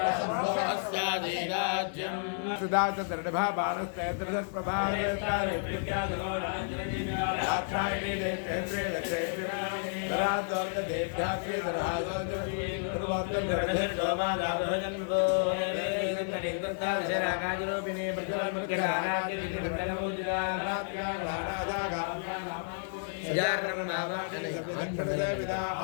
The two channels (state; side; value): silent; right; 57 dB below the other